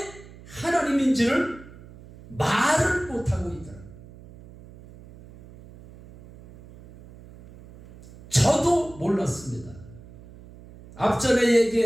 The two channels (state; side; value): noise; right; hum, 20 dB below the sound